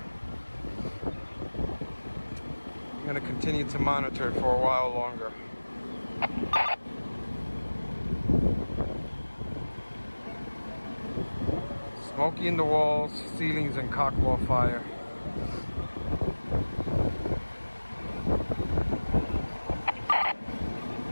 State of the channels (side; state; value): both; inverted; correlation -1.00